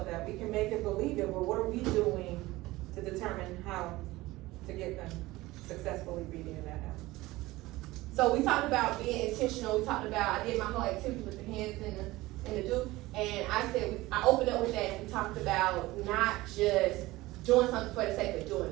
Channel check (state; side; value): quieter; left; 19.0 dB